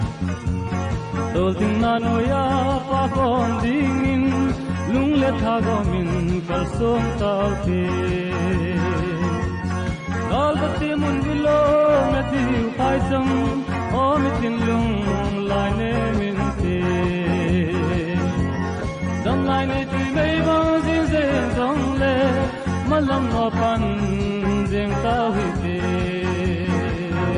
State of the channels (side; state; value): both; identical; correlation 1.00